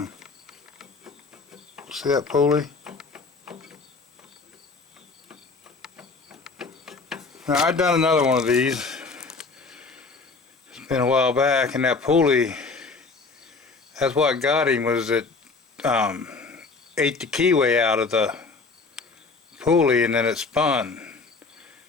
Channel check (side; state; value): right; quieter; 4.2 dB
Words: see that pulley? Now I've done another one of these. It's been a while back, and that pulley, that's what got him, was it ate the keyway out of the pulley and then it spun.